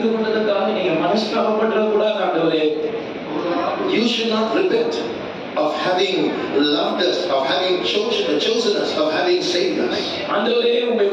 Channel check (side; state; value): both; identical; correlation 1.00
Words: கொண்டதற்காக நீங்க மனஸ்தாபப்படக்கூடாது ஆண்டவரே. You should not repent of having loved us, of having chosen us, of having saved us. ஆண்டவரே, உம்மை